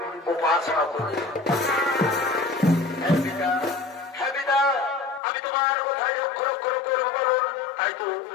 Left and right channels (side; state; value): right; drops out; at 5.2 s